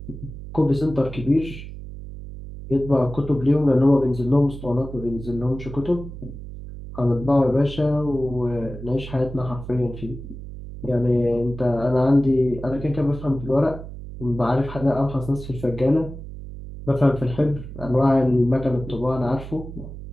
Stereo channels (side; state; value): right; noise; hum, 12 dB below the sound